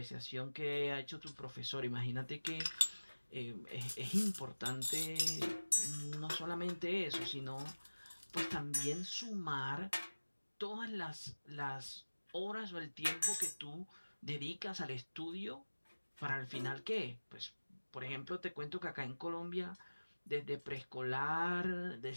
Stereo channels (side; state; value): both; inverted; correlation -1.00